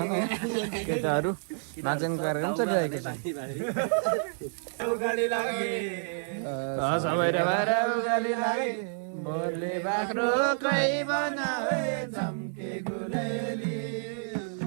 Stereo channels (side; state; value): left; silent; 58 dB below the other